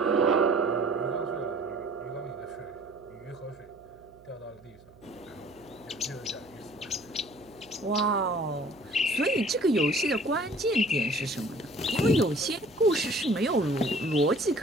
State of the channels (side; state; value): right; noise; hum, 26 dB below the sound